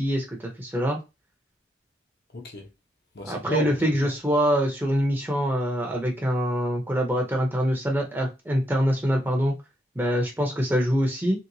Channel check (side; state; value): both; normal; correlation 0.78